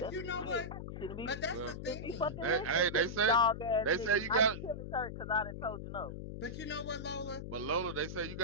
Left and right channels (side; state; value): left; noise; hum, 8 dB below the sound